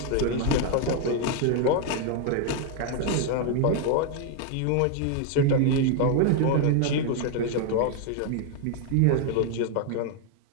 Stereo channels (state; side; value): different; both; correlation 0.00